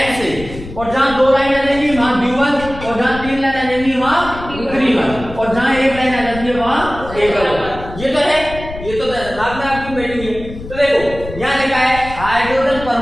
से, और जहां दो लाइन आ जाएंगी वहां द्विबंध, और जहां तीन लाइन आ जाएंगी वहां त्रिबंध, और जहां एक लाइन आ जाती है वहां एकल बंध। ये तो है, ये तो दिमाग में आपकी बैठी हुई है। तो देखो यहां लिखा है हाइड्रोजन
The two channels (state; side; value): noise; left; rumble, 12 dB below the sound